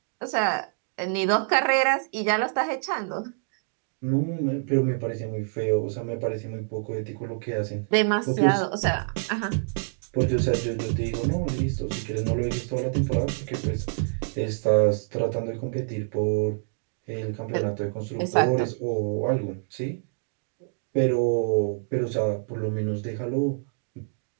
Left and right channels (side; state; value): left; silent; digital silence